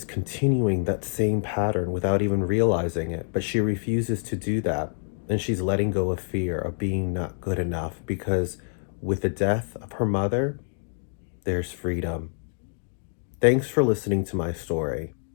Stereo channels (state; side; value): silent; right; digital silence